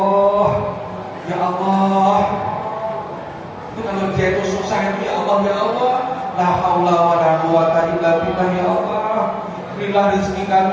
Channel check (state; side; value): identical; both; correlation 1.00